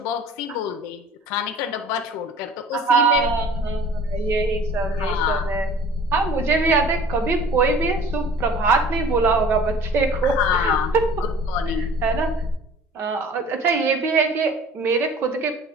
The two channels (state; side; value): normal; both; correlation 0.46